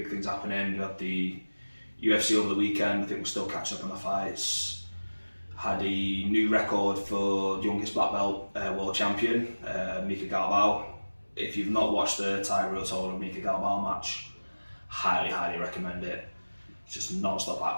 things happening. We had the UFC over the weekend. I think we're still catching up on the fights. Had a new record for youngest black belt world champion, Mika Galvao. If you've not watched the Tiger Total Mika Galvao match, highly recommend it. It's just non-stop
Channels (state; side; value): inverted; both; correlation -1.00